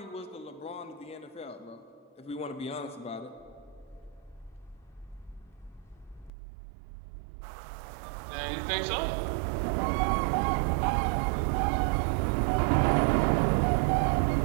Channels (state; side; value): drops out; left; at 6.3 s